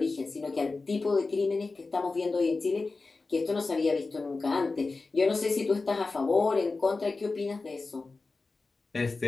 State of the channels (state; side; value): quieter; right; 3.8 dB